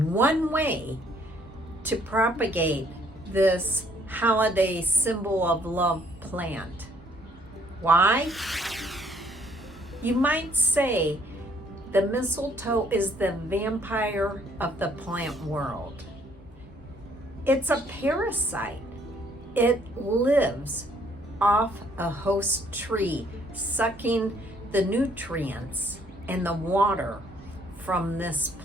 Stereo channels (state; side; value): normal; both; correlation 0.64